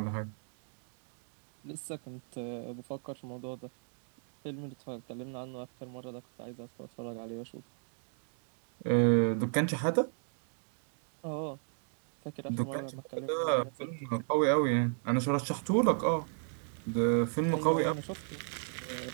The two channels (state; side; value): silent; left; 55 dB below the other